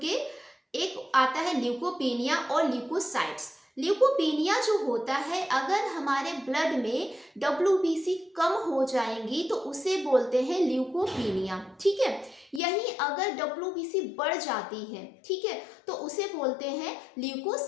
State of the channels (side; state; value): right; drops out; at 12.6 s